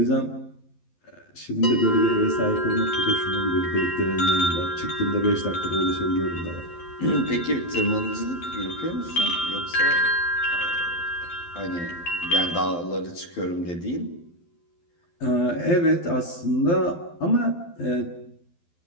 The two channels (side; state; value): right; late; 12 ms